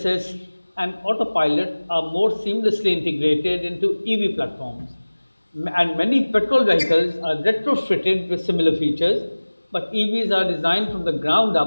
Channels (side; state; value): both; inverted; correlation -1.00